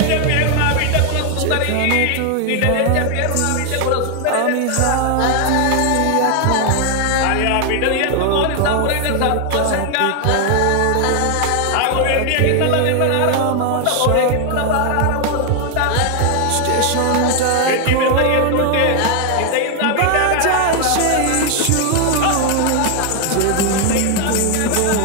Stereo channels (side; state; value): both; different; correlation 0.00